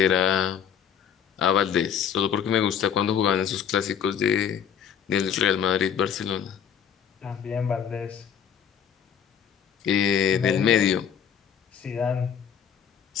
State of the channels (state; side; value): quieter; right; 8.2 dB